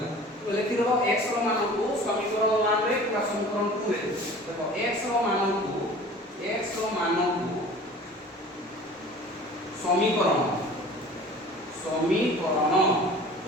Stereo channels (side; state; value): both; normal; correlation 0.43